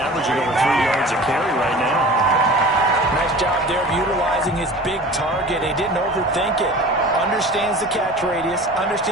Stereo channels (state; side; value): normal; both; correlation 0.40